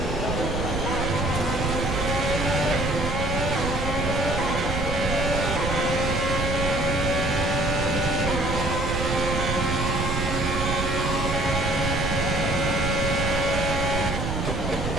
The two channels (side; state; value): right; noise; rumble, 2 dB below the sound